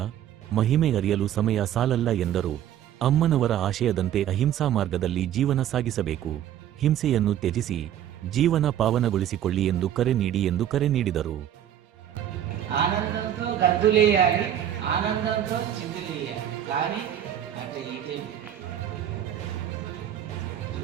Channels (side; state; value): left; quieter; 10.7 dB